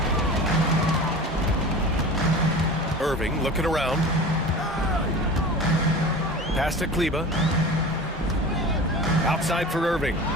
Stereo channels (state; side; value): normal; both; correlation 0.35